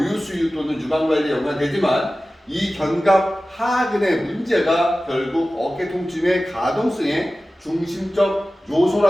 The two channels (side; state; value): both; normal; correlation 0.96